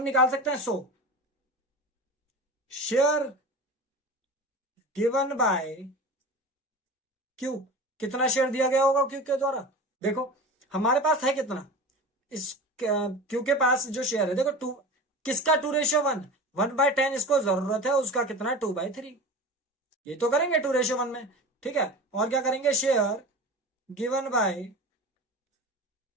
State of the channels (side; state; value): both; normal; correlation 0.32